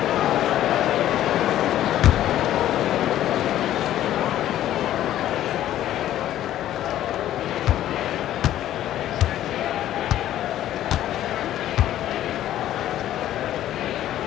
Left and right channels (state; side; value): quieter; right; 12.6 dB